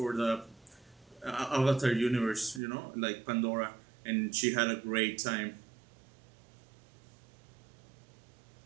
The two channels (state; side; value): drops out; left; at 2.6 s